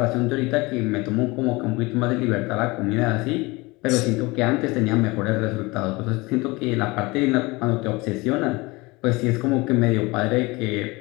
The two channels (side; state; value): right; quieter; 23.6 dB